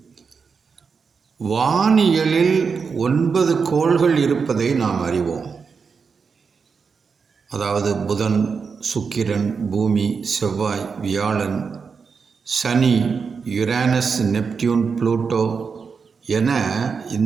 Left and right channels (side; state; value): left; quieter; 5.5 dB